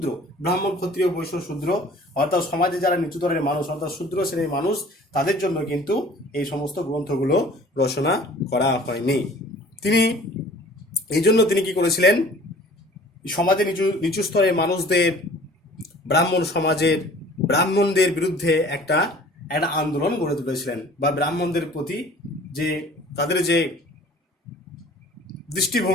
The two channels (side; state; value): both; normal; correlation 0.49